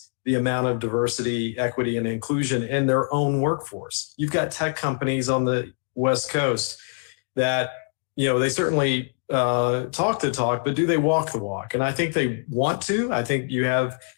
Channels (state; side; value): silent; right; digital silence